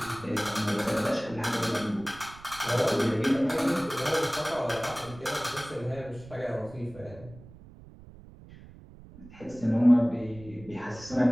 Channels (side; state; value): right; noise; rumble, 19 dB below the sound